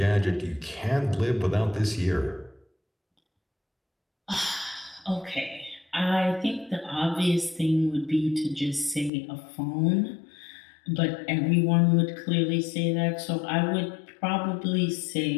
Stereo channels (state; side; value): drops out; right; at 9.1 s